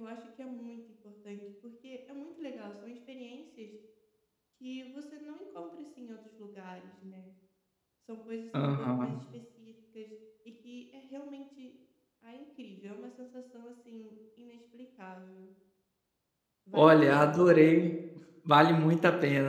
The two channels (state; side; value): identical; both; correlation 1.00